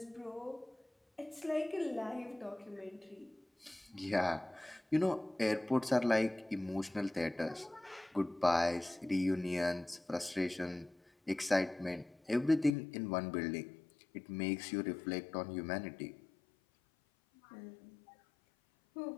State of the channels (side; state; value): right; drops out; at 12.8 s